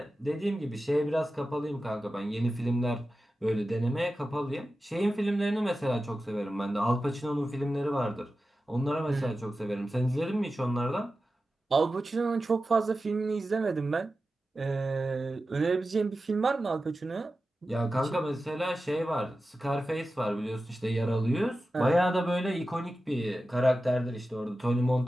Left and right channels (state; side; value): normal; both; correlation 0.93